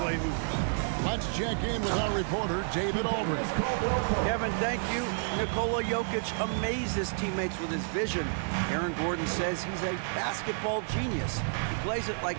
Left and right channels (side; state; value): left; silent; 58 dB below the other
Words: play hoops. Let's check in with our reporter, David Aldridge. Kevin, thank you. Nikola Jokic amazed his teammates with his vision. Aaron Gordon says he's a basketball genius. He plays it like